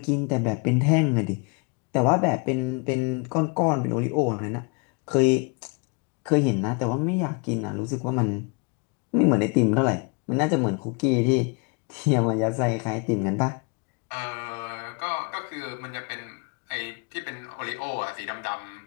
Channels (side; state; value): right; quieter; 33.0 dB